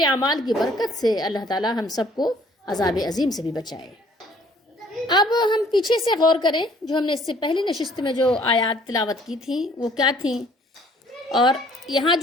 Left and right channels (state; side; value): normal; both; correlation 0.59